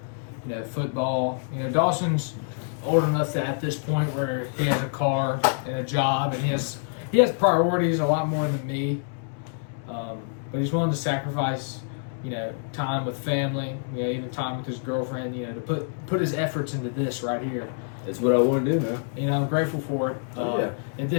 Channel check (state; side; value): silent; right; 61 dB below the other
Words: Football. Dawson's old enough that at this point where he has a car and a job, and he has priorities a lot more than me. But he's willing to sacrifice, time with family, even time with his girlfriend, to put his efforts into this right here. That's what I want to do, man. I'm grateful for it. If